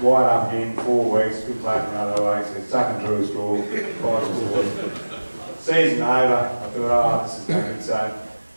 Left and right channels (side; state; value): both; inverted; correlation -1.00